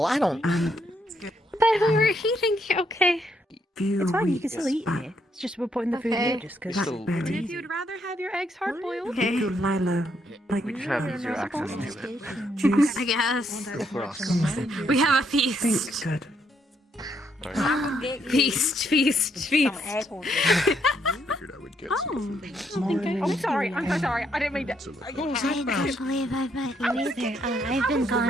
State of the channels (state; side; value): normal; both; correlation 0.74